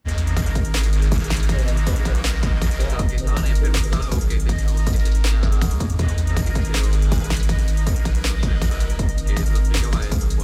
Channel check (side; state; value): both; identical; correlation 1.00